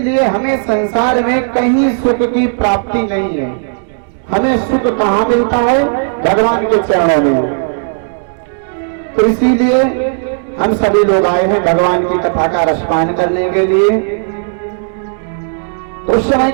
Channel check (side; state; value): left; silent; digital silence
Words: हमें संसार में कहीं सुख की प्राप्ति नहीं है। हमें सुख कहाँ मिलता है? भगवान के चरणों में। तो इसीलिए हम सभी लोग आए हैं भगवान की कथा का रसपान करने के लिए। तो उस समय